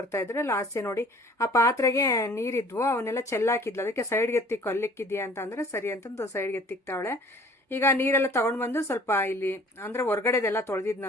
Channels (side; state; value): both; normal; correlation 0.51